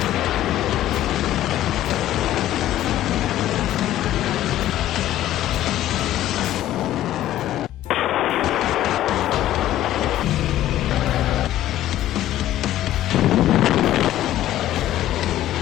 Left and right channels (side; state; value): right; quieter; 13.3 dB